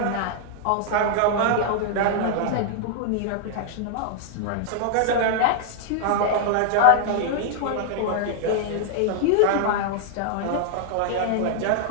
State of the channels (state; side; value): different; both; correlation 0.00